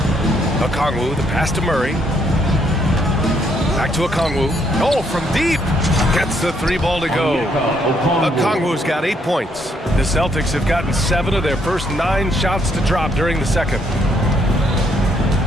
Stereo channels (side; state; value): both; normal; correlation 0.71